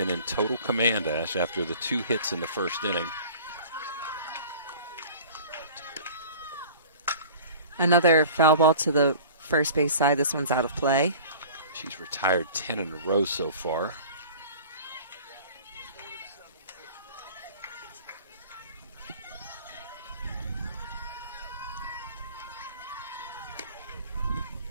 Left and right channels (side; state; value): both; inverted; correlation -0.43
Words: in total command, Ash, after the 2 hits in the first inning. Another foul ball to the first base side. This one's out of play. She's retired 10 in a row so far.